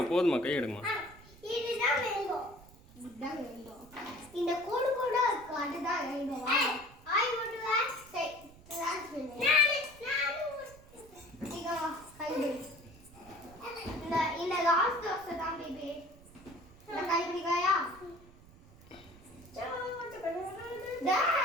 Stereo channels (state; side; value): noise; right; rumble, 22 dB below the sound